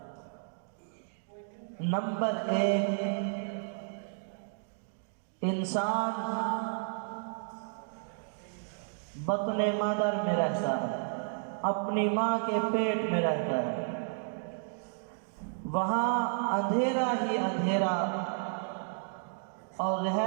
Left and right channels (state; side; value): silent; left; digital silence